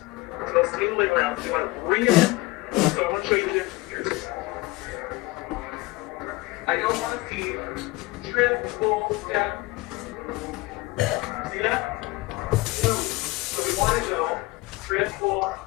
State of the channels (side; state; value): right; quieter; 21.0 dB